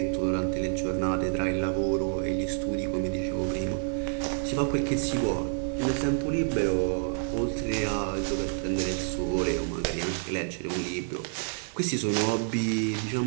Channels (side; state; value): left; silent; digital silence